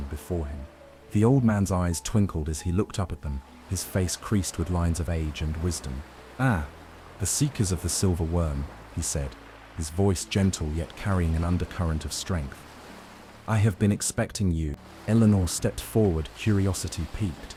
before him. The old man's eyes twinkled as he looked up at them, his face creased with lines of age and wisdom. "Ah, the seekers of the silver worm," he said, his voice gentle yet carrying an undercurrent of strength. "I have been expecting you." Eleanor stepped forward, curiosity piqued.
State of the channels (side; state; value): both; identical; correlation 1.00